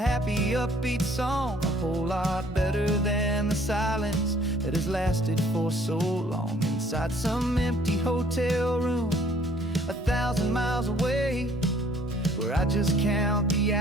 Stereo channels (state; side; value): normal; both; correlation 0.59